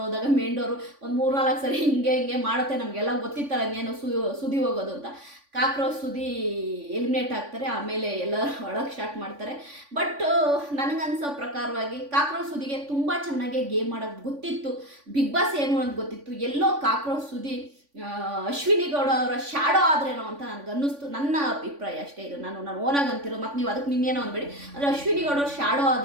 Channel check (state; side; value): late; left; 3.5 ms